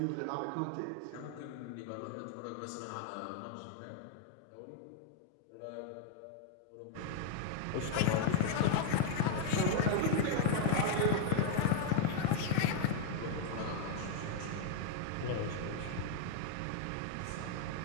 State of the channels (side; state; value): both; different; correlation 0.00